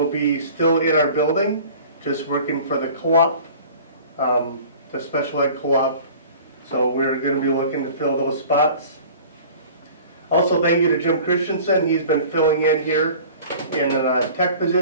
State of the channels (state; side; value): inverted; both; correlation -0.44